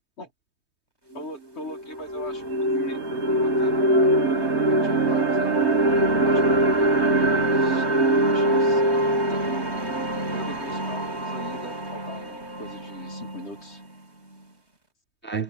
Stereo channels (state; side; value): late; right; 3.2 ms